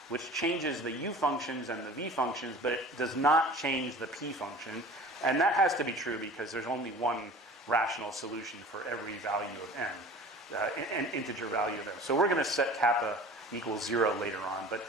which changes the u functions and the v functions, but it does not change the p function. And that has to be true because there's only one rational solution for every value of m, an integer value of m. So we're going to set kappa equals 0 later on.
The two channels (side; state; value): both; normal; correlation 0.42